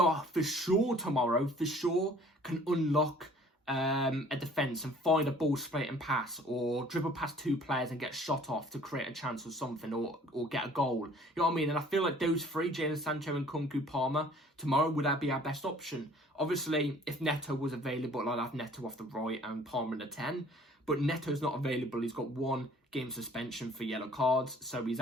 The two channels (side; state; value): both; normal; correlation 0.53